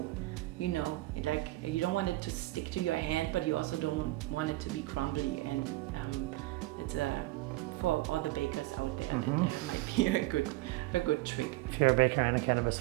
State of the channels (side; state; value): left; quieter; 19.1 dB